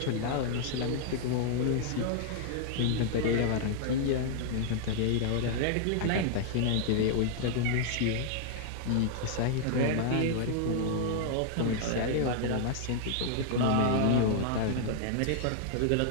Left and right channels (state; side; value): different; both; correlation -0.01